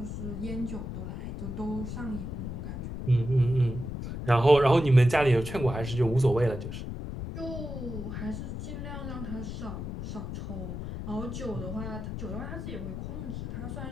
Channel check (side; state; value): left; noise; rumble, 6 dB below the sound